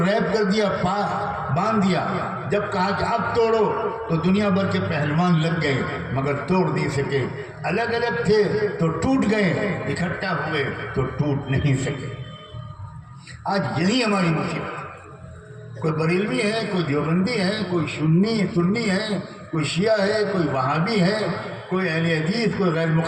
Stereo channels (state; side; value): identical; both; correlation 1.00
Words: کر دیا، باندھ دیا. جب کہا کہ اب توڑو تو دنیا بھر کے پہلوان لگ گئے مگر توڑ نہیں سکے. الگ الگ تھے تو ٹوٹ گئے، اکٹھا ہوئے تو ٹوٹ نہیں سکے. آج یہی ہماری مصیبت. کوئی بریلوی ہے، کوئی دیوبندی ہے، کوئی سنی ہے، کوئی شیعہ ہے، کوئی وہابی ہے، کوئی اہل حدیث، کوئی غیر